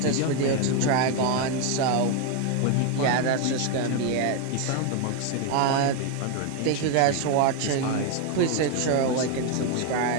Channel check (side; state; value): both; different; correlation 0.01